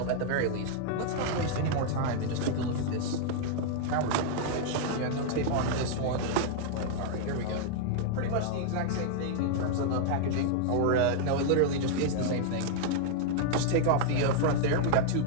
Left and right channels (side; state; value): both; different; correlation 0.00